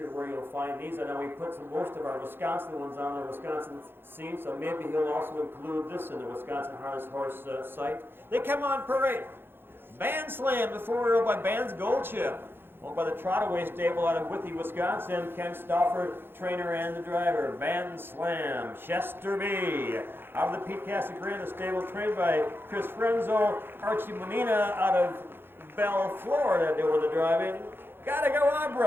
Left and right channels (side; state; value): left; late; 0.10 ms